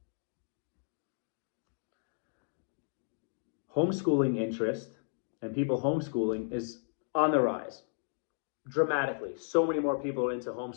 homeschooling interest and people homeschooling is on the rise. Dramatically. So many more people are into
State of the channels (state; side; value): silent; right; digital silence